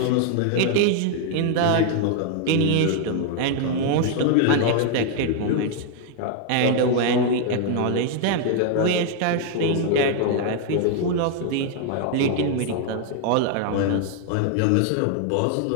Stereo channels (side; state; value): both; different; correlation 0.00